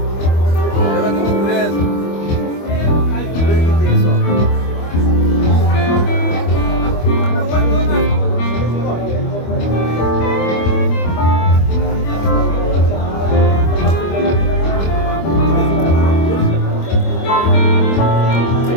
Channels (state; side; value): late; right; 25 ms